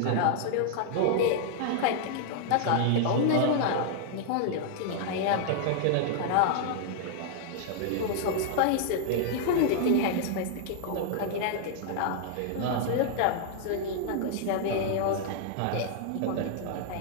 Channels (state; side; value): different; both; correlation -0.01